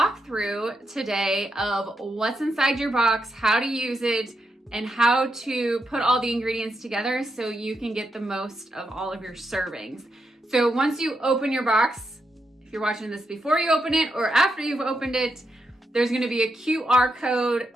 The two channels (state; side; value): normal; both; correlation 0.83